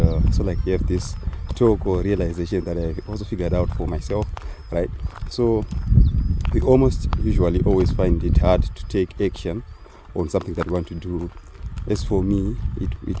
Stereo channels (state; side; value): identical; both; correlation 1.00